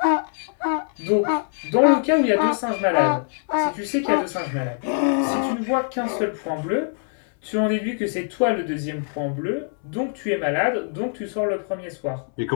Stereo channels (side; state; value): right; silent; 63 dB below the other